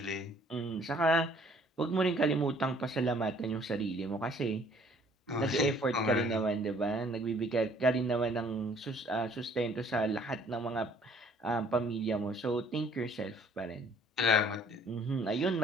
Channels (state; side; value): normal; both; correlation 0.58